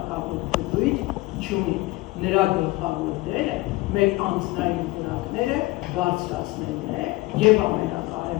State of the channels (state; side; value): quieter; right; 20.6 dB